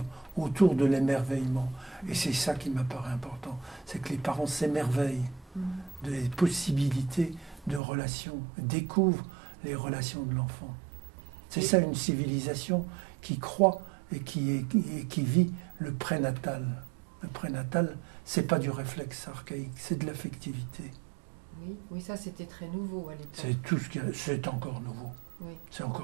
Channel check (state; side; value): drops out; left; at 7.8 s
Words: autour de l'émerveillement. Et c'est ça qui m'apparaît important, c'est que les parents s'émerveillent des possibilités de relations, découvrent les relations de l'enfant. C'est ça une civilisation qui croit et qui vit le prénatal. Le prénatal, c'est pas du réflexe archaïque, c'est de l'affectivité. Oui, ça c'était très nouveau à l'époque. C'est tout ce c'est encore nouveau. Oui. C'est